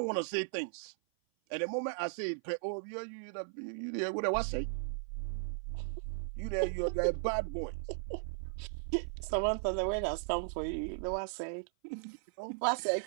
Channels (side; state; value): left; silent; 53 dB below the other